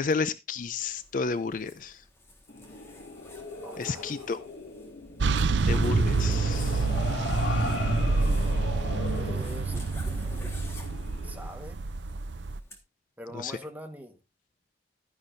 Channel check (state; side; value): normal; both; correlation 0.68